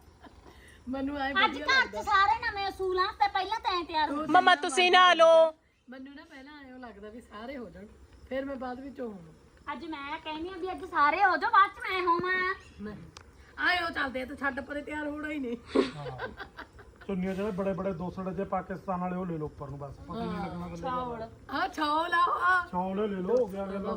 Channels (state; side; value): identical; both; correlation 1.00